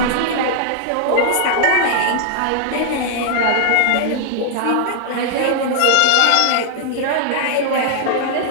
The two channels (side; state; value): both; different; correlation 0.00